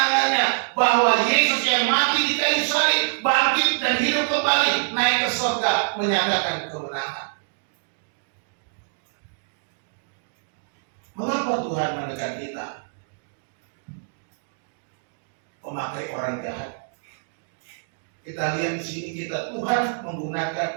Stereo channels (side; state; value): left; silent; digital silence